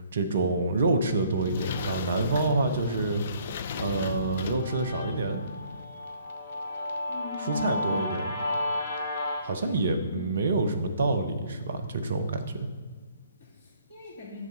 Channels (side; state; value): both; inverted; correlation -0.62